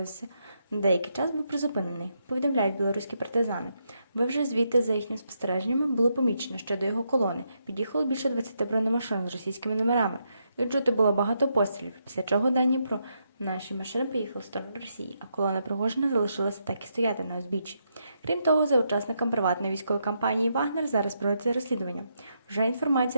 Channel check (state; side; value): inverted; both; correlation -0.80